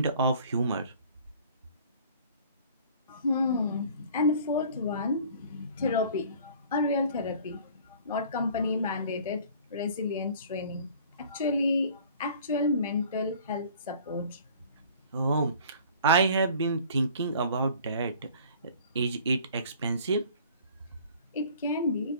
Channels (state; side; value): inverted; both; correlation -0.49